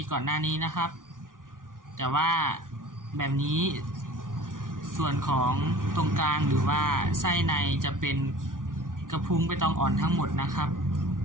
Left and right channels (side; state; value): left; late; 0.89 ms